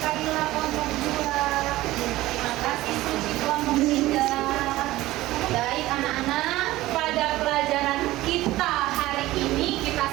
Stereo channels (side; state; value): left; quieter; 17.0 dB